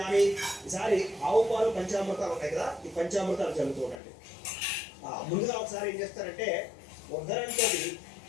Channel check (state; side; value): drops out; right; at 4.0 s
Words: ఈసారి ఆవు పాలు పంచామృతాలు ఉంటాయి కదా, ఈ పంచామృతాలు చల్లుతూ ఉండండి. ముందుగా ఒకసారి ఏం చేస్తారంటే ఉద్ధరణతో